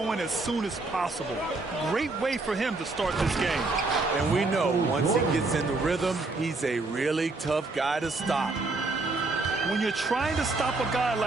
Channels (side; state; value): left; quieter; 3.4 dB